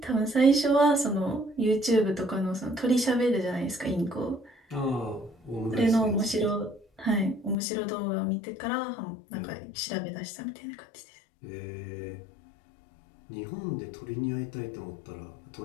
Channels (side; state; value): right; drops out; at 7.6 s